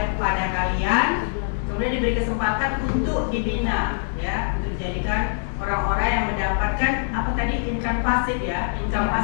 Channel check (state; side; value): silent; right; 63 dB below the other